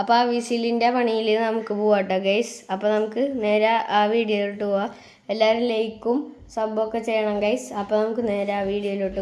ആ വിസിലിൻ്റെ പണിയിൽ നമുക്ക് പോവാട്ടോ ഗൈസ്. അപ്പോൾ നമുക്ക് നേരെ ആ വീഡിയോയിലോട്ട് പോവാം. എല്ലാവരും ലൈക്കും സബ്ബൊക്കെ ചെയ്യണം ഗൈസ്. അപ്പോൾ നമുക്ക് നേരെ ആ വീഡിയോയിലോട്ട്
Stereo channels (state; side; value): identical; both; correlation 1.00